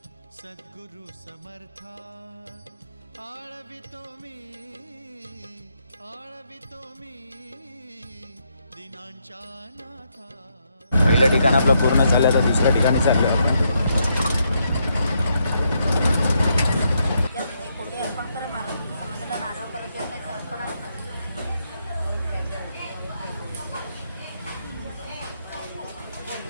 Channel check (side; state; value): both; inverted; correlation -0.78